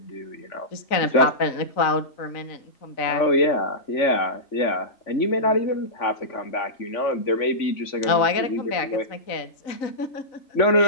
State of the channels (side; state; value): right; late; 3.9 ms